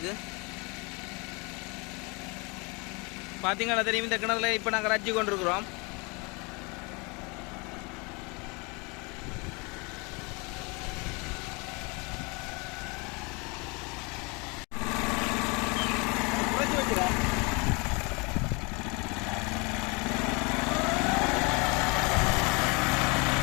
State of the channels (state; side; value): quieter; right; 29.4 dB